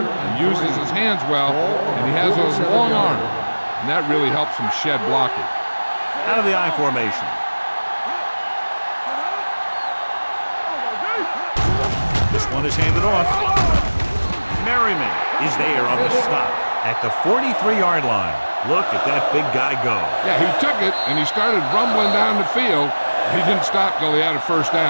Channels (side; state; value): both; inverted; correlation -1.00